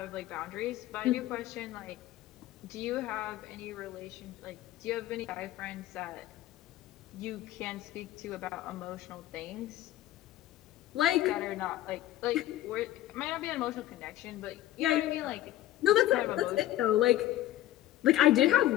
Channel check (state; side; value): quieter; right; 14.4 dB